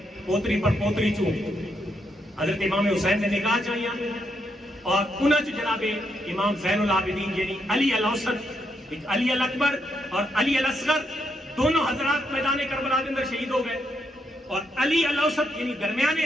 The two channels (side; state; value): both; normal; correlation 0.79